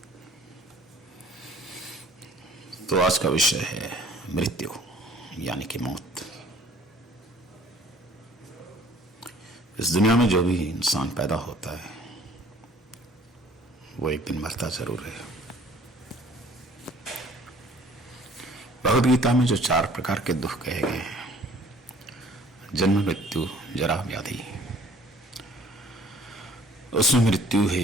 तो आज का विषय है मृत्यु यानी कि मौत। इस दुनिया में जो भी इंसान पैदा होता है वो एक दिन मरता जरूर है। भगवद गीता में जो 4 प्रकार के दुख कहे गए हैं, जन्म, मृत्यु, जरा, व्याधि, उसमें मृत्यु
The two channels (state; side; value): normal; both; correlation 0.54